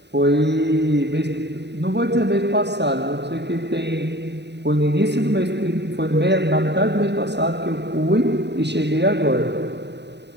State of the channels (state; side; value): late; left; 0.50 ms